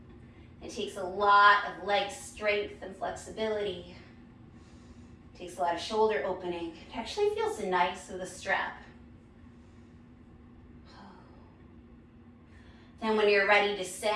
It takes a lot of leg strength and flexibility. It takes a lot of shoulder opening. It actually feels nice with a strap. Then when you're ready,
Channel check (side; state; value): both; identical; correlation 1.00